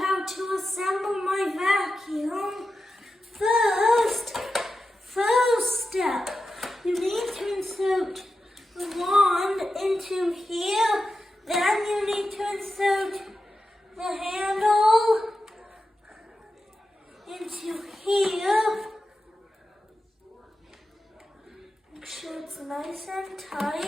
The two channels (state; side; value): normal; both; correlation 0.91